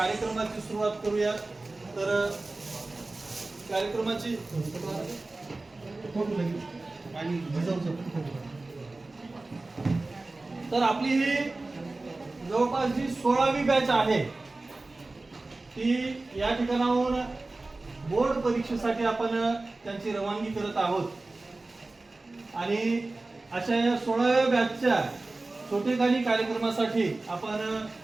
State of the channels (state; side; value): quieter; left; 3.2 dB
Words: सुरुवात करूया. तर कार्यक्रमाची तर आपली ही जवळपास जी 16वी बॅच आहे ती या ठिकाणाहून बोर्ड परीक्षेसाठी आपण त्यांची रवानगी करत आहोत आणि अशा या 16व्या बॅचच्या छोटेखानी कार्यक्रमासाठी आपण